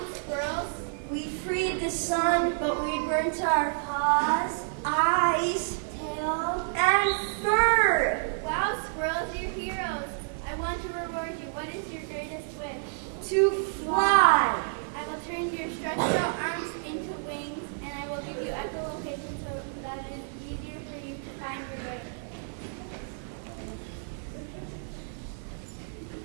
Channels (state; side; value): silent; left; 56 dB below the other